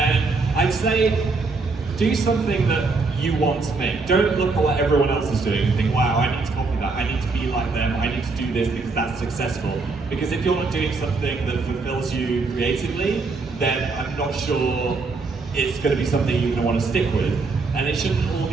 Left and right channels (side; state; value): left; quieter; 4.0 dB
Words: I'd say do something that you want to make. Don't look at what everyone else is doing and think, wow, I need to copy that. I need to be like them. I need to do this because that's successful. Because if you're not doing something that fulfills you creatively, then I'm not sure it's going to be something you're going to want to stick with. And it shouldn't all